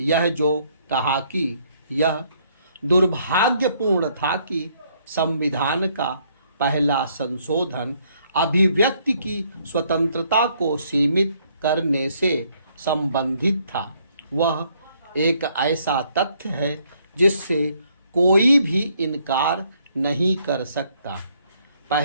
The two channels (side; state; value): both; inverted; correlation -0.68